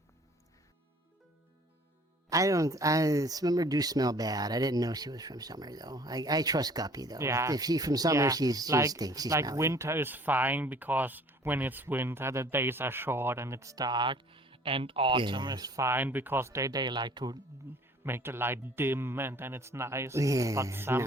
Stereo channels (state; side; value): normal; both; correlation 0.53